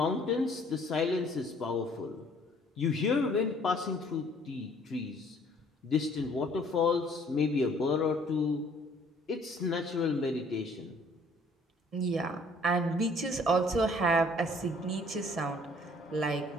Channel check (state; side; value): normal; both; correlation 0.58